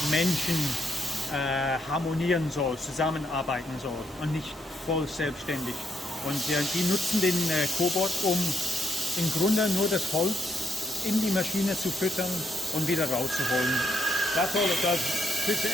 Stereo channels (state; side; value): normal; both; correlation 0.77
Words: Menschen harmonieren soll, zusammenarbeiten soll und nicht voll selbstständig. Und die nutzen den Cobot, um im Grunde nur das Holz in die Maschine zu füttern und wieder rauszuholen. That's all it does. Puts